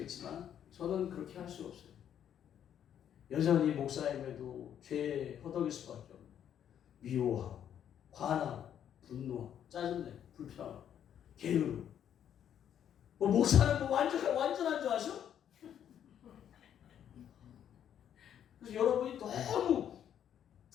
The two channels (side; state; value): right; quieter; 9.6 dB